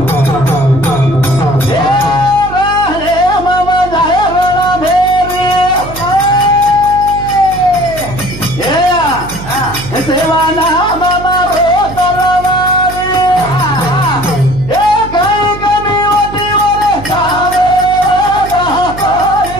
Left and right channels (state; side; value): noise; right; hum, 12 dB below the sound